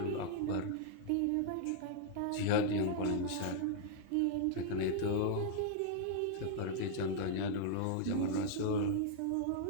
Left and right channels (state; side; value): different; both; correlation -0.01